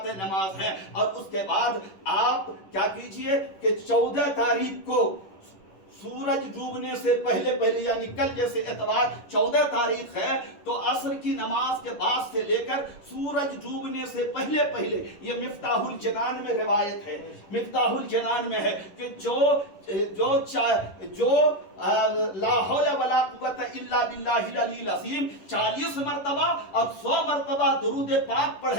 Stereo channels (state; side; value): late; right; 10 ms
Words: نماز ہیں. اور اس کے بعد آپ کیا کیجئے کہ 14 تاریخ کو سورج ڈوبنے سے پہلے یعنی کل جیسے اتوار 14 تاریخ ہے، تو عصر کی نماز کے بعد سے لے کر سورج ڈوبنے سے پہلے یہ مفتاح الجنان میں روایت ہے، مفتاح الجنان میں ہے کہ جو لا حول ولا قوت الا باللہ العلی العظیم 40 مرتبہ اور 100 مرتبہ درود پاک